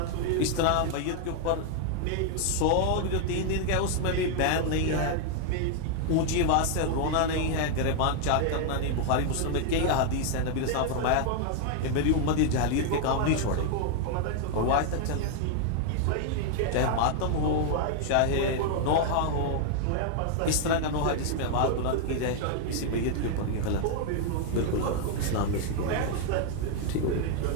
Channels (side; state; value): both; different; correlation 0.00